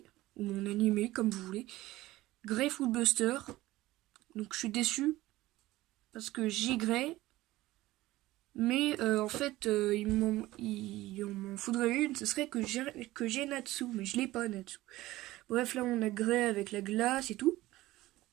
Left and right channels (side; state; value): left; quieter; 17.3 dB